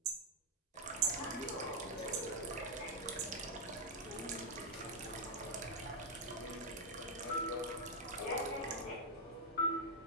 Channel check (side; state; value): both; normal; correlation -0.03